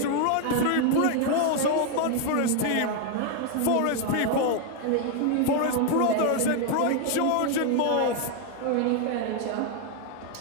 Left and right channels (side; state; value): both; different; correlation 0.01